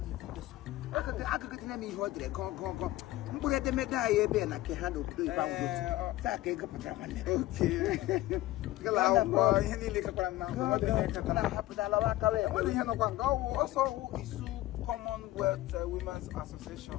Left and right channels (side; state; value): right; quieter; 16.4 dB